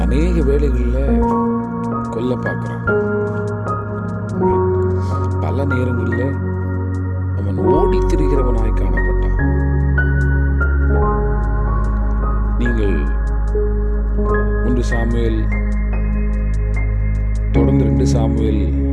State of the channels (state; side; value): identical; both; correlation 1.00